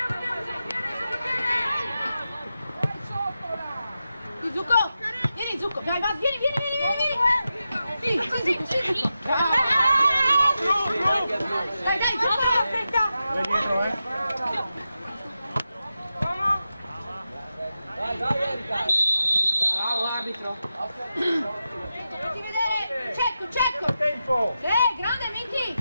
Tu, Zucco! Vieni, Zucco! Vai, vai, vieni! Sì, Zucco, sì! Dai, Zucco! Aspetta! Vai dietro, Bravo arbitro. Facci vedere! Cecco! Tempo! Grande Miki!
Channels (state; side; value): inverted; both; correlation -0.90